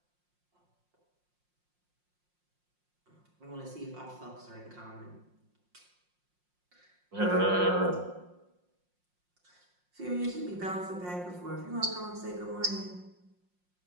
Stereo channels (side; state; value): left; late; 5.6 ms